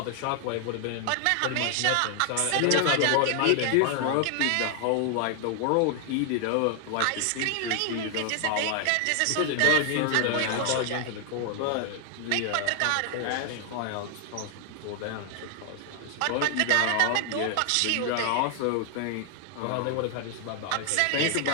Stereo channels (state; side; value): different; both; correlation 0.00